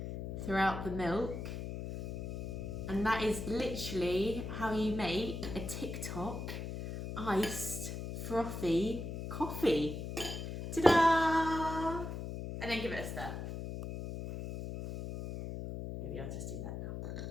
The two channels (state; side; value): noise; left; hum, 6 dB below the sound